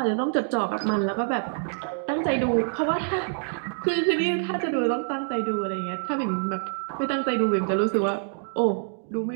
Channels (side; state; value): left; silent; digital silence